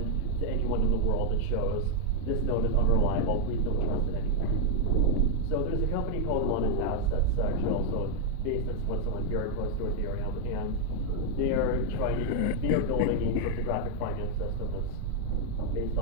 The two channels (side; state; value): both; different; correlation 0.00